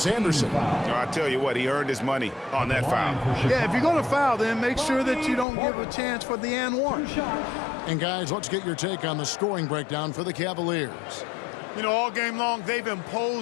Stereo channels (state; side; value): drops out; right; at 5.5 s